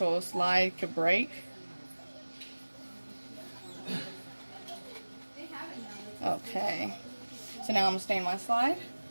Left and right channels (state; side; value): inverted; both; correlation -1.00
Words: slide could break. Okay. So now I'm gonna stain my slide.